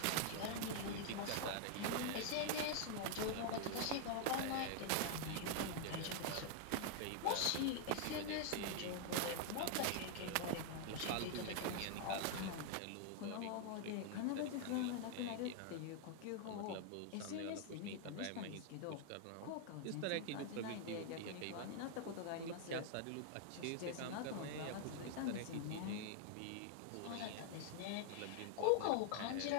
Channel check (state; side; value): different; both; correlation 0.00